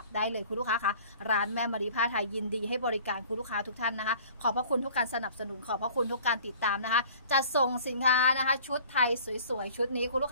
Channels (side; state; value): both; inverted; correlation -0.48